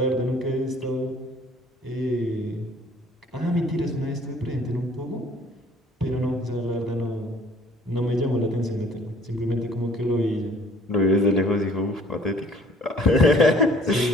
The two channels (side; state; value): both; normal; correlation 0.55